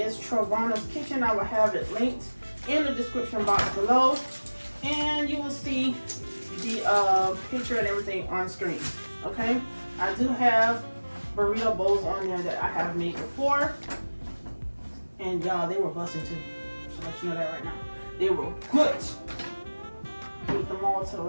Travana's Kitchen. I will have it linked in the description box below, and you will see the picture and everything on screen. Okay, I do have burrito bowls on there that I have made before. And y'all, they were busting too. So let you know that right now. They were good. Beat them all to the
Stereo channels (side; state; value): both; inverted; correlation -1.00